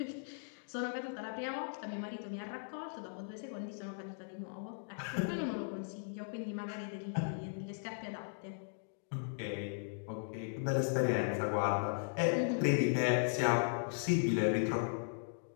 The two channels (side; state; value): right; silent; digital silence